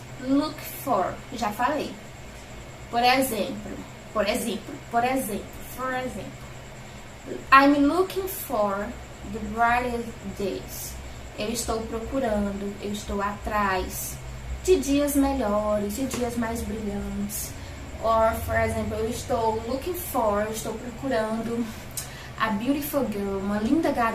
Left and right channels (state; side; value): identical; both; correlation 1.00